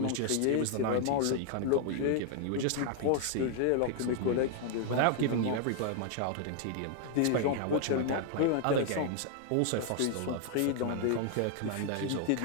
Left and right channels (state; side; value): different; both; correlation 0.00